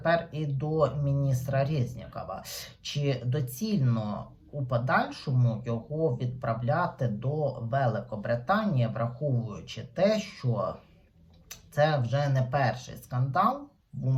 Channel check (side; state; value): both; identical; correlation 1.00